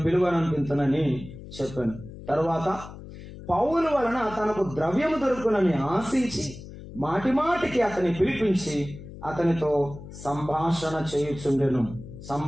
పిలువనంపించనని చెప్పాను. తర్వాత పౌలు వలన తనకు ద్రవ్యము దొరుకునని ఆశించి మాటిమాటికి అతని పిలిపించి అతనితో సంభాషణ చేయుచుండెను.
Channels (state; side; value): noise; left; hum, 14 dB below the sound